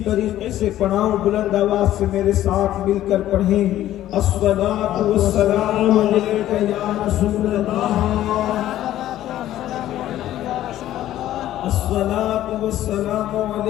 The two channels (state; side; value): quieter; right; 13.2 dB